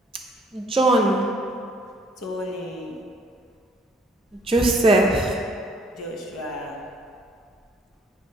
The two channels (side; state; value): both; normal; correlation 0.62